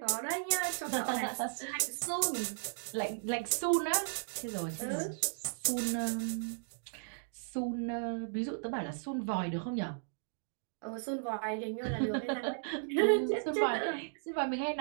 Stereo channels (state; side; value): silent; left; digital silence